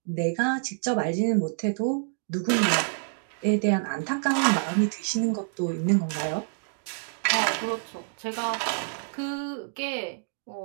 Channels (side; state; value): left; silent; digital silence